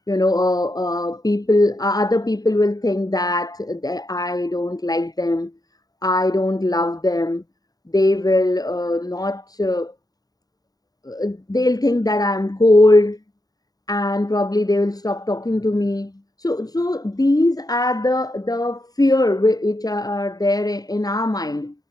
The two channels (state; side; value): late; right; 0.18 ms